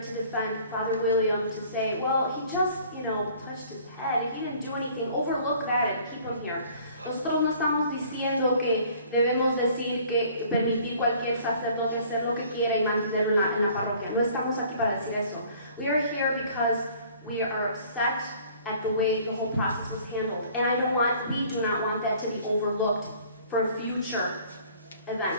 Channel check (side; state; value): both; inverted; correlation -0.53